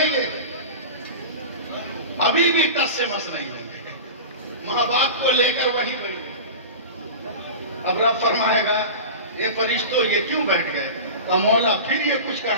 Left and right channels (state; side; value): inverted; both; correlation -0.30